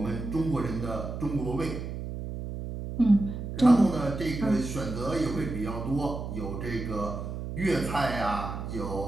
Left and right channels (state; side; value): noise; right; hum, 6 dB below the sound